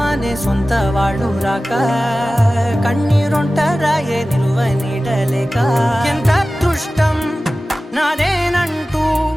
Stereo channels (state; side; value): normal; both; correlation 0.96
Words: అనే సొంత వాళ్ళు రాక కన్నీరొంటరాయే నిలువ నీడలేక ఎంత అదృష్టం నాదేనంటూ